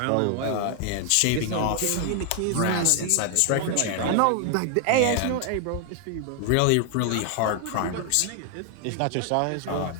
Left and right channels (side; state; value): both; different; correlation 0.00